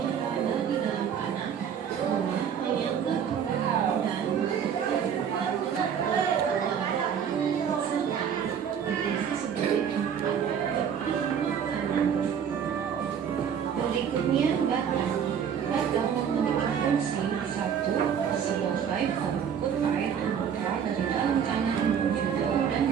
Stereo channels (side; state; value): left; quieter; 7.9 dB